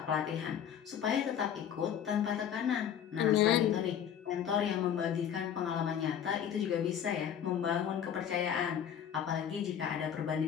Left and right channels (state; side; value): quieter; right; 9.0 dB